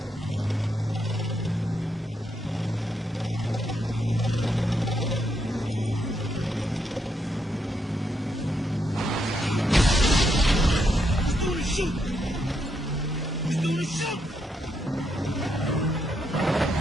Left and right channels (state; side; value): normal; both; correlation 0.78